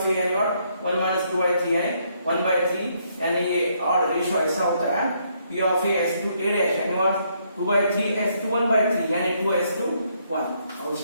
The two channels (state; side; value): inverted; both; correlation -0.72